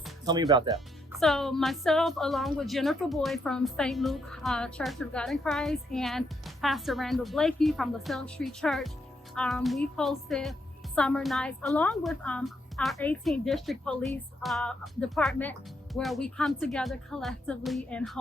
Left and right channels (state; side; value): normal; both; correlation 0.77